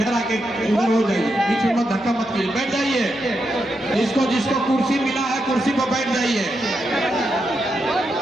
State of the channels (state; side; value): normal; both; correlation 0.84